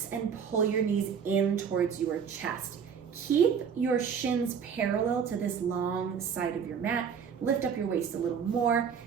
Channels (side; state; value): left; quieter; 7.0 dB